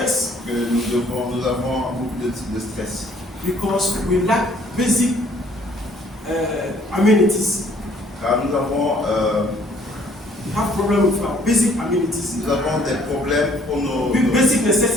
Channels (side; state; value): both; normal; correlation 0.60